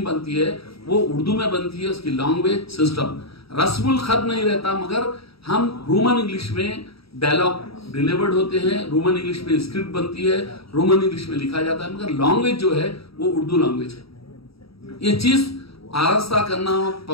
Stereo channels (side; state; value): right; late; 0.76 ms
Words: बनती है वो उर्दू में बनती है। उसकी लैंग्वेज सिस्टम रस्मुल खत नहीं रहता, मगर हम रोमन इंग्लिश में डायलॉग डिलीवर्ड होते हैं, रोमन इंग्लिश में स्क्रिप्ट बनती है, रोमन इंग्लिश में लिखा जाता है, मगर लैंग्वेज जो है वो उर्दू लैंग्वेज है। ये चीज आरास्ता करना,